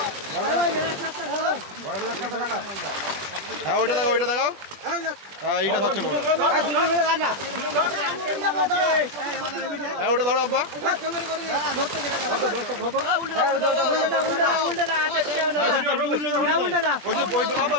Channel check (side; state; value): left; late; 21 ms